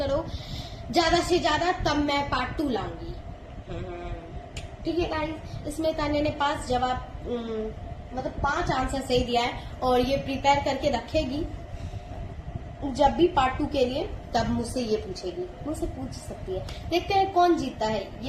ज्यादा से ज्यादा, तब मैं पार्ट 2 लाऊंगी। ठीक है गाइज, इसमें तान्या ने 5 जवाब मतलब 5 आंसर सही दिया है, और ये प्रिपेयर करके रखेगी जब भी पार्ट 2 के लिए, तब मुझसे ये पूछेगी, मुझसे पूछ सकती है। देखते हैं कौन जीतता है,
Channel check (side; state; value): both; identical; correlation 1.00